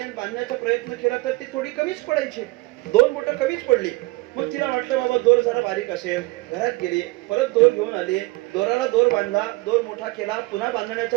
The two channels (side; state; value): left; quieter; 22.6 dB